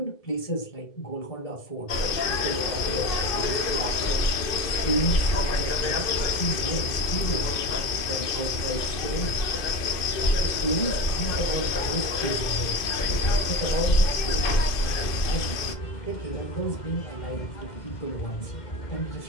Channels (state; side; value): late; right; 2.5 ms